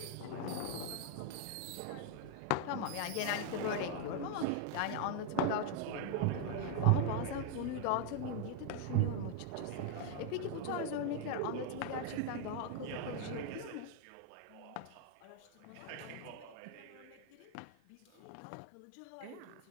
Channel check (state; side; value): different; both; correlation 0.00